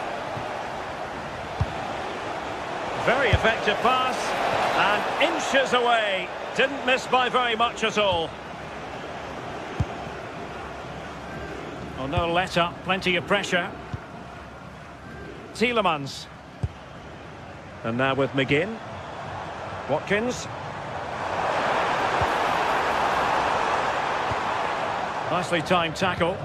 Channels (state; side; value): identical; both; correlation 1.00